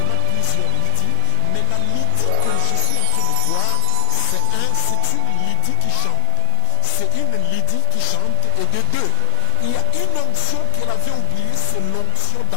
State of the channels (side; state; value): both; different; correlation 0.01